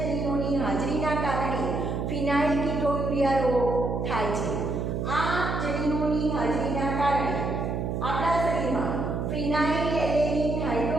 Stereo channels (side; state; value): right; noise; hum, 1 dB below the sound